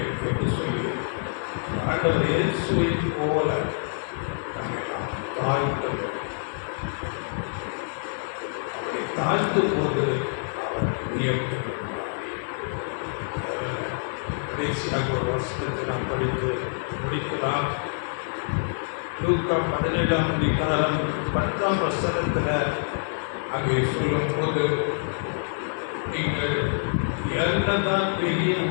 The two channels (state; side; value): silent; right; digital silence